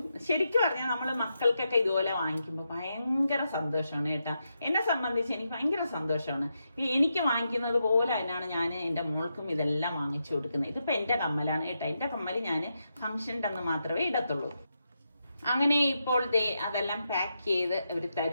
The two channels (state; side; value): inverted; both; correlation -0.85